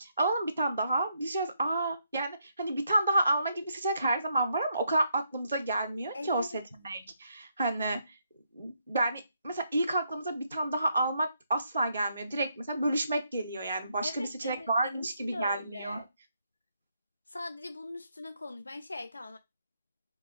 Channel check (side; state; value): both; inverted; correlation -0.77